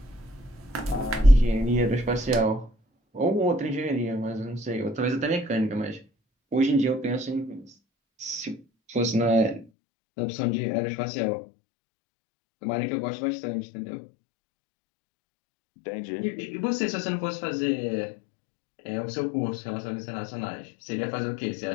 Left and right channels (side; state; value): right; drops out; at 9.7 s